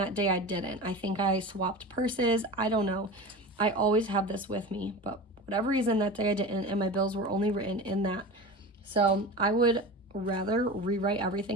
day I didn't. I think I swapped purses. I don't know. I always have this with me, but whatever reason that day I didn't, and my bills were only written in that. So I would rather rewrite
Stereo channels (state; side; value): normal; both; correlation 0.31